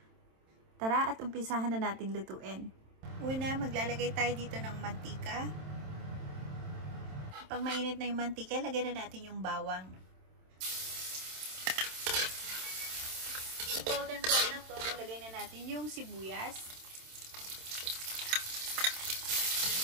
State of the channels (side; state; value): left; late; 27 ms